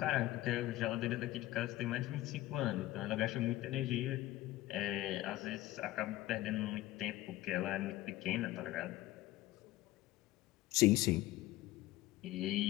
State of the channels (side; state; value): right; quieter; 16.5 dB